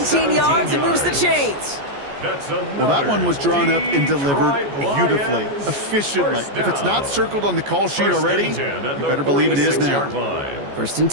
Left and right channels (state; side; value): late; left; 14 ms